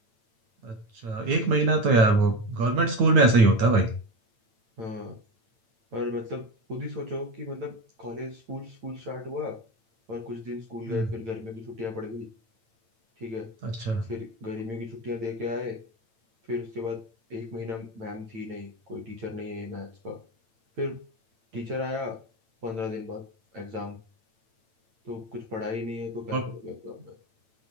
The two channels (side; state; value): left; late; 8.9 ms